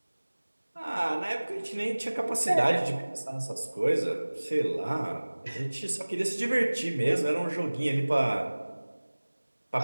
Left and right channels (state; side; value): inverted; both; correlation -1.00